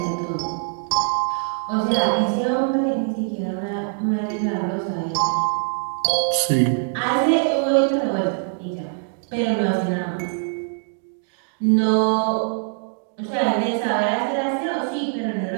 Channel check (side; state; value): left; silent; digital silence